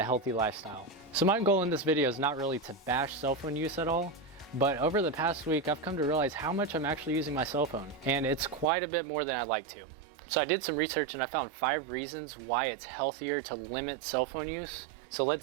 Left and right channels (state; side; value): drops out; left; at 8.7 s